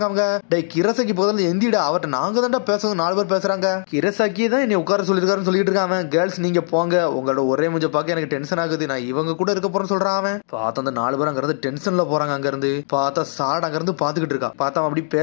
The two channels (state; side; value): silent; right; digital silence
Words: அவங்க. டே கிரசாக்கி போதில் எந்திடா, அவர்கிட்ட நாங்க தான்டா பேசுறது, 4 பேர் பேசுறாங்க. கிரசாக்கி தான் என்னை உட்கார சொல்லிருக்காருன்னு சொல்லிட்டு இருக்காங்க. கேர்ள்ஸ் நீங்க போங்க, உங்களோட ஒரே மூஞ்ச பார்க்க எனக்கு டென்ஷன் ஆகுது, நான் இவங்க கூட இருக்க போறேன்னு சொல்றான். பார்த்தா அந்த 4 பேர் அங்க இருந்து டென்ஷன்ல போறாங்க. அங்க இருந்து பார்த்தா சாட் அங்க இருந்து பாத்துக்கிட்டு இருக்கான். பார்த்தா அப்படி